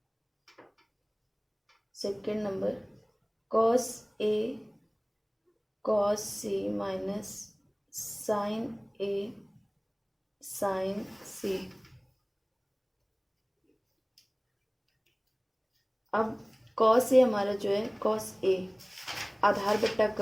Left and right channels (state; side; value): identical; both; correlation 1.00